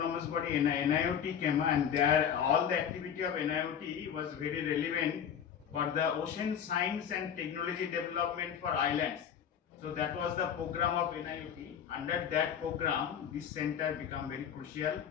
body NIOT came, and there all the activity of NIOT was very relevant for the ocean science and technology development for islands. So that was the program of NIOT. Under that program, this center became very crucial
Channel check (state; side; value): quieter; right; 8.4 dB